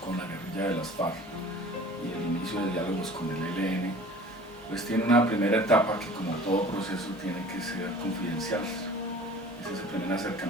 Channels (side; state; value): both; normal; correlation 0.45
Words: con la guerrilla de las FARC y el inicio de diálogos con el ELN, pues tiene una primera etapa que, como todo proceso, tiene que ser confidencial. Es ese primer